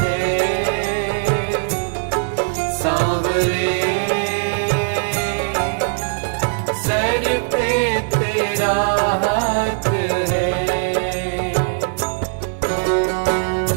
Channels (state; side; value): silent; left; digital silence